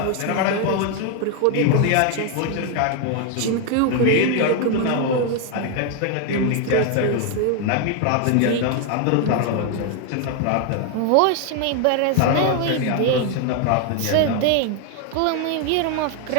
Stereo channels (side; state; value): both; different; correlation 0.01